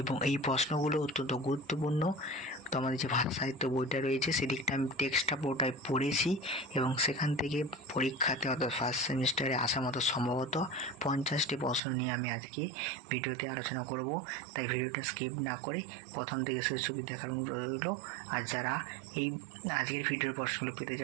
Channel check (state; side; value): drops out; left; at 11.8 s